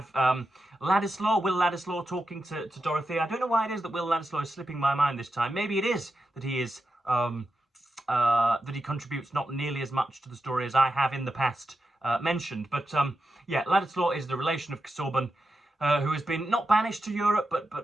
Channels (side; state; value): both; normal; correlation 0.89